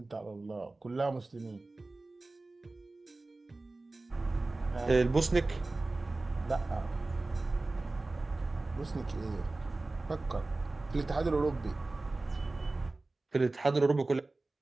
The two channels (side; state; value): left; quieter; 3.1 dB